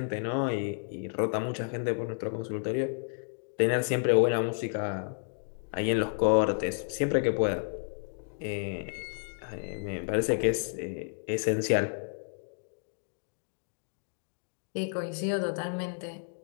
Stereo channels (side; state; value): right; silent; digital silence